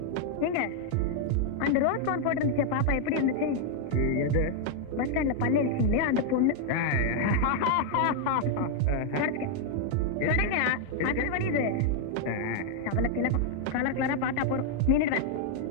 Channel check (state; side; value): different; both; correlation 0.00